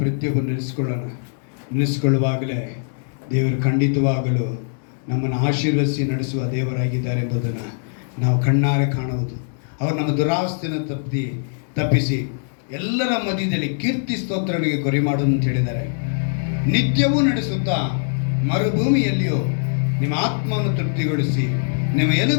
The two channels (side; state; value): right; silent; digital silence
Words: ಪ್ರತಿಯೊಬ್ಬರು ನೆನೆಸಿಕೊಳ್ಳುವಾಗಲೇ ದೇವರು ಖಂಡಿತವಾಗಲು ನಮ್ಮನ್ನು ಆಶೀರ್ವದಿಸಿ ನಡೆಸುವ ದೇವರಾಗಿದ್ದಾರೆ ಎಂಬುದನ್ನು ನಾವು ಕಣ್ಣಾರೆ ಕಾಣುವುದು. ಅವರು ನಮ್ಮ ದುರಾವಸ್ಥೆಯನ್ನು ತಪ್ಪಿಸಿ ಎಲ್ಲರ ಮಧ್ಯದಲ್ಲಿ ಕೀರ್ತಿ ಸ್ತೋತ್ರಗಳಿಗೆ ಗುರಿ ಮಾಡುವುದು ಅಂತ ಹೇಳಿದ್ದಾರೆ. ನಿತ್ಯವೂ ನಡೆಸುತ್ತಾ ಮರುಭೂಮಿಯಲ್ಲಿಯೂ ನಿಮ್ಮ ಆತ್ಮವನ್ನು ತೃಪ್ತಿಗೊಳಿಸಿ ನಿಮ್ಮ